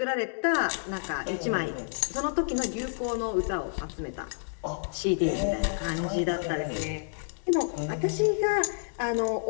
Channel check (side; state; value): right; silent; digital silence